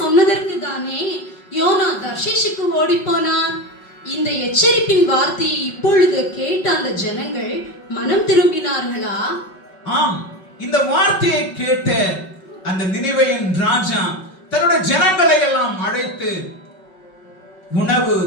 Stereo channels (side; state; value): right; late; 5.4 ms